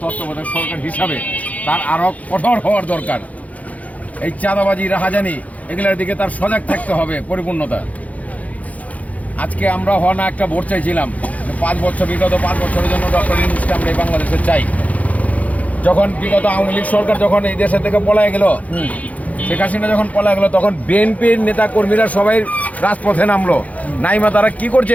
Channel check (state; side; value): late; right; 0.071 ms